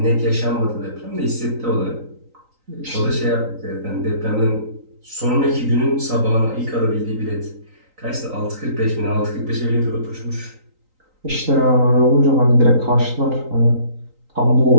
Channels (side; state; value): left; late; 3.9 ms